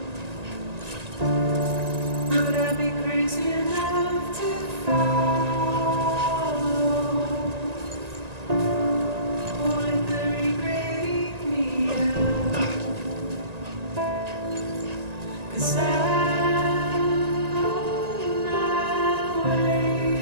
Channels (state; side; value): late; left; 1.9 ms